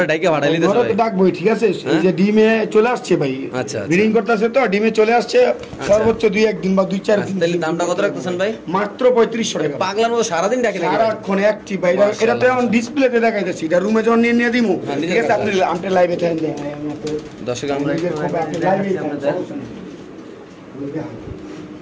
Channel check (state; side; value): identical; both; correlation 1.00